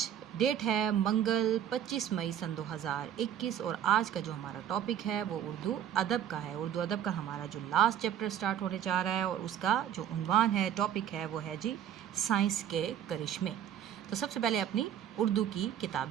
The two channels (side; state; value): left; quieter; 10.0 dB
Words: डेट है मंगल 25 मई सन 2021 और आज का जो हमारा टॉपिक है वो उर्दू अदब का है। उर्दू अदब का हमारा जो लास्ट चैप्टर स्टार्ट होने जा रहा है और उसका जो उन्वान है, टॉपिक है, वो है जी साइंस के करिश्मे। तो सबसे पहले अपनी उर्दू की